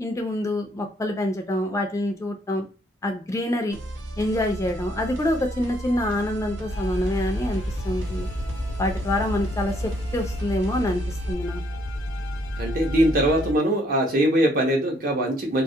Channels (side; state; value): both; normal; correlation 0.68